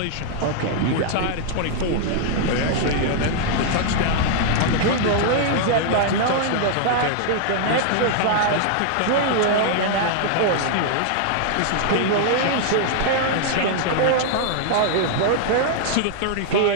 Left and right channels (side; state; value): both; different; correlation -0.01